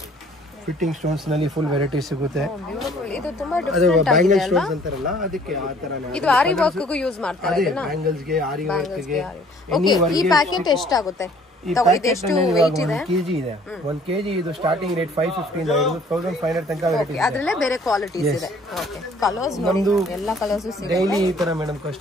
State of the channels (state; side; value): normal; both; correlation 0.56